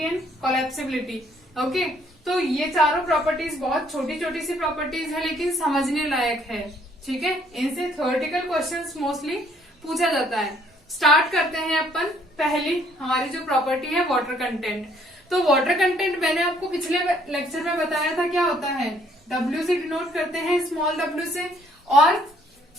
and collapsibility, okay. तो ये चारों प्रॉपर्टीज बहुत छोटी छोटी सी प्रॉपर्टीज है, लेकिन समझने लायक है, ठीक है। इनसे थ्योरेटिकल क्वेश्चंस मोस्टली पूछा जाता है। स्टार्ट करते हैं अपन। पहली हमारी जो प्रॉपर्टी है वाटर कंटेंट। तो वाटर कंटेंट मैंने आपको पिछले लेक्चर में बताया था क्या होता है। W से डिनोट करते हैं, स्मॉल w से, और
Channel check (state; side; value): normal; both; correlation 0.64